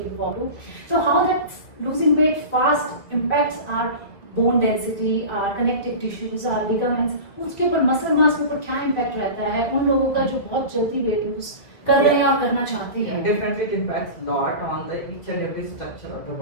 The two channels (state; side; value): late; right; 2.3 ms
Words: forward to. So how that losing weight fast impacts our bone density, our connective tissues, our ligaments, उसके ऊपर muscle mass के ऊपर क्या impact रहता है उन लोगों का जो बहुत जल्दी weight lose कर रहे हैं और करना चाहते हैं? Definitely it impacts a lot on the each and every structure of the